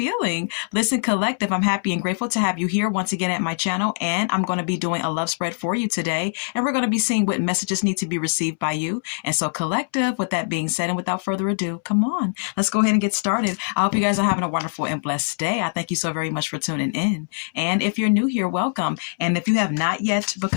Listen, Collective, I'm happy and grateful to have you here once again at my channel, and I'm going to be doing a love spread for you today, and we're going to be seeing what messages need to be received by you. And so, Collective, with that being said, and without further ado, come on, let's go ahead and get started. I hope you guys are having a wonderful and blessed day. I thank you so very much for tuning in. And if you're new here, welcome. And if you have not yet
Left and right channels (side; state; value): right; silent; 64 dB below the other